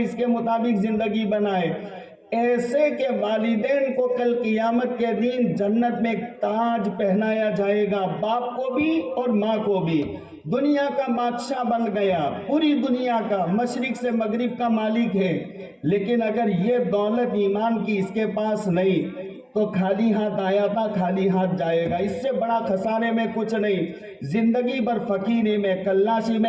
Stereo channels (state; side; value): identical; both; correlation 1.00